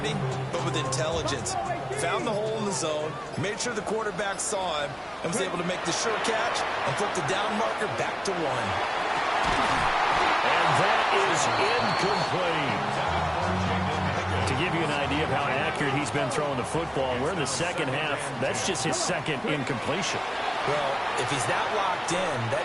but with intelligence. Found the hole in the zone, made sure the quarterback saw him, and was able to make the sure catch and put the down marker back to 1. And that is incomplete. To give you an idea of how accurate he's been throwing the football, we're in the second half. That's just his second incompletion. Well, if he's that locked in, that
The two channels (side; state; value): both; identical; correlation 1.00